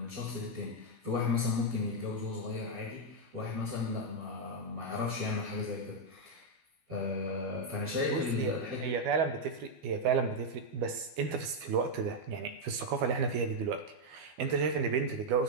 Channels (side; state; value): left; late; 12 ms